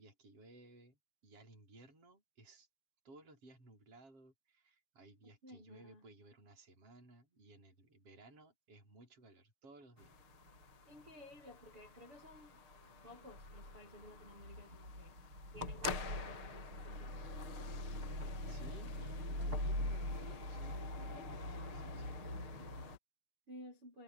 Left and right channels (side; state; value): left; late; 6.6 ms